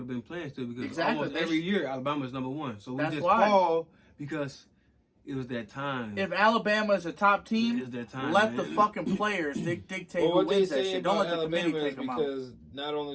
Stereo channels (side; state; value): both; identical; correlation 1.00